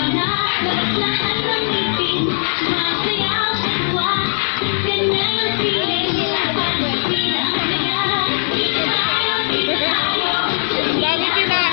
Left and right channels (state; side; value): silent; right; 67 dB below the other